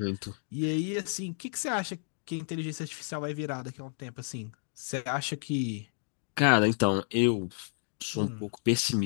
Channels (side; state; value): right; silent; digital silence